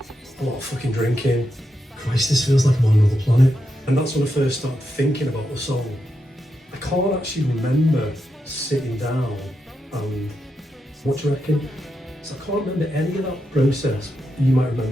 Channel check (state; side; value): normal; both; correlation 0.85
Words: lot of fucking drinking. Christ, this feels like I'm on another planet. And that's when I first started thinking about the song. I can't actually remember sitting down and, what do you reckon? So I can't remember any of that process. You might